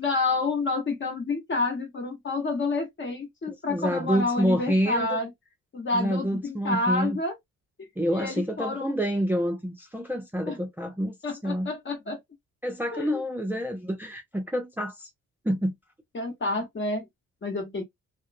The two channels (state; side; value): normal; both; correlation 0.45